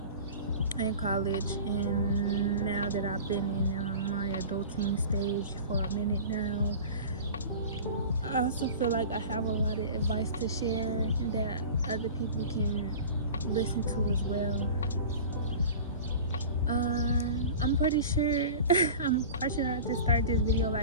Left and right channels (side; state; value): both; inverted; correlation -0.37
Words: and college, and now that I've been in my adulting stage for a minute now, I also feel like I have a lot of advice to share that other people can listen to as well. I'm pretty sure, I'm quite sure I just started this video